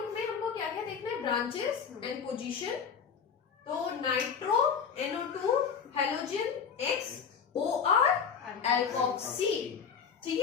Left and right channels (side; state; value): right; quieter; 6.6 dB